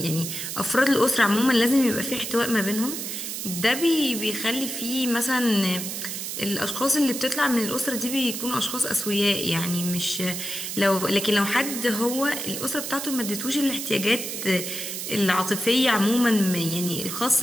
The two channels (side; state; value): right; noise; hiss, 5 dB below the sound